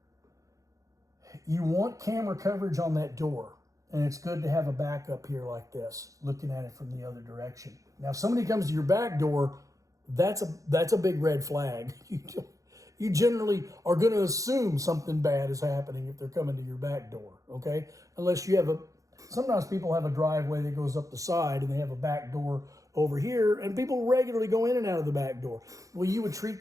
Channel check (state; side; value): late; left; 0.16 ms